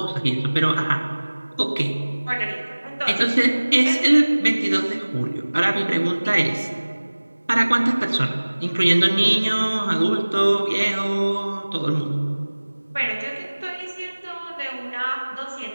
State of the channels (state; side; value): inverted; both; correlation -1.00